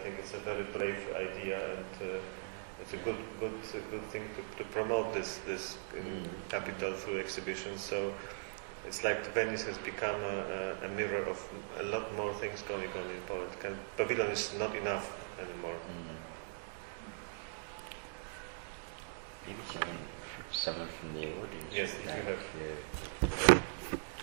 think it's a very brave idea, and it's a good thing to promote this capital through exhibitions. So it's like Venice has become a mirror of a lot more things going on in Poland. Pavilion is not enough anymore. Maybe someone from the audience. Yes, would like to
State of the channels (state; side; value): silent; left; digital silence